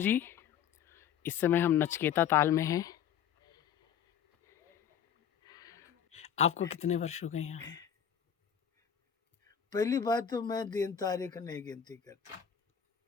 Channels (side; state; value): right; quieter; 8.6 dB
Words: इस समय हम नचकेता ताल में हैं। आपको कितने वर्ष हो गए यहाँ? पहली बात तो मैं दिन तारीख नहीं गिनती करता।